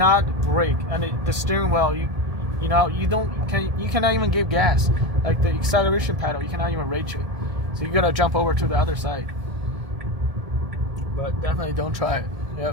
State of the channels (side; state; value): left; late; 1.8 ms